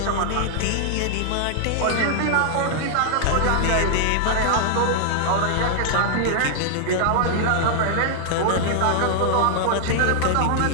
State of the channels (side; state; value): both; different; correlation -0.01